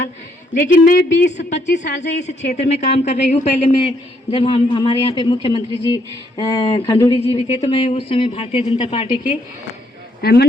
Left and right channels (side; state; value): both; normal; correlation 0.71